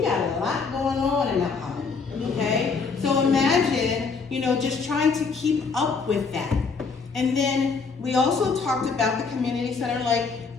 a lot going on in Mount Holly, okay? So imagine, just trying to keep up with that. And then we also talked about the community center, like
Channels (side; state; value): right; quieter; 4.9 dB